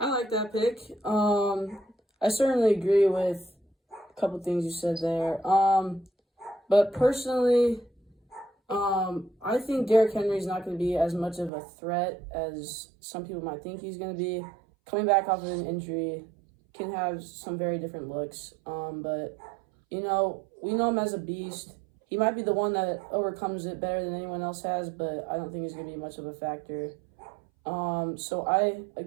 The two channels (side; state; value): left; drops out; at 11.5 s